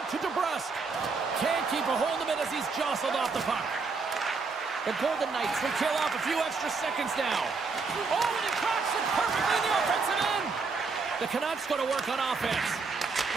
to DeBrusque. Can't keep a hold of it as he's jostled off the puck. The Golden Knights will kill off a few extra seconds now. Oh, and he cracks it perfectly in the offensive end. The Canucks go to work on offense.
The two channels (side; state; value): left; quieter; 4.5 dB